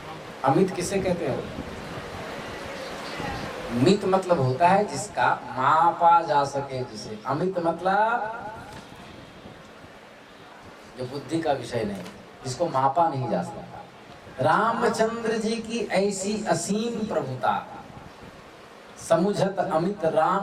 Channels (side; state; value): both; identical; correlation 1.00